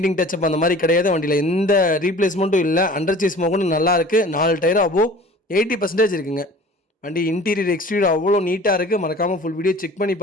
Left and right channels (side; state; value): both; normal; correlation 0.44